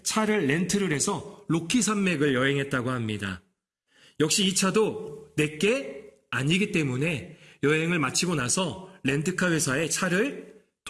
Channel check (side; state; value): both; identical; correlation 1.00